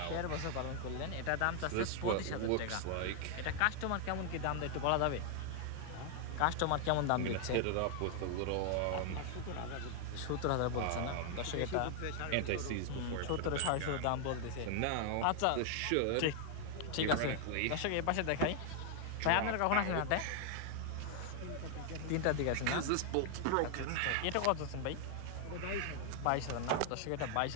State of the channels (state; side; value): different; both; correlation 0.00